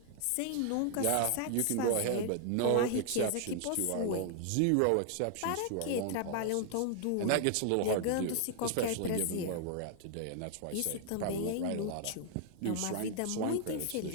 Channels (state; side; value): different; both; correlation 0.00